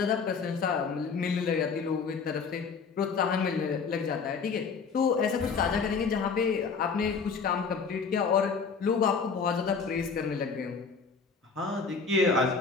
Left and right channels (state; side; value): quieter; right; 5.3 dB